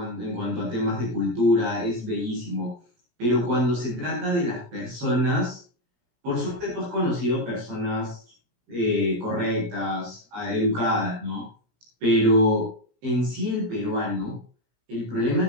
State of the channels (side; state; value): left; late; 17 ms